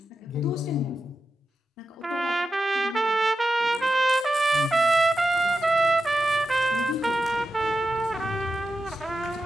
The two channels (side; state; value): both; normal; correlation 0.90